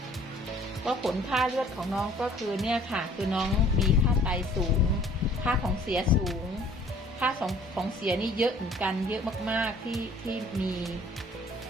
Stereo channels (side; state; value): both; normal; correlation 0.54